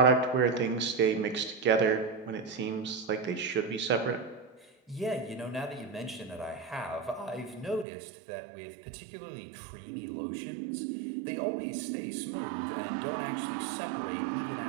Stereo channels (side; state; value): left; drops out; at 7.9 s